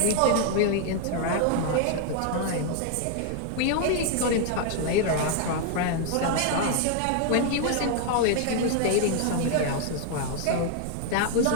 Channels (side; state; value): both; different; correlation 0.00